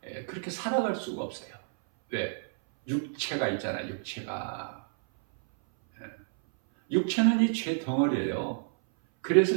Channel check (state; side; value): silent; left; 58 dB below the other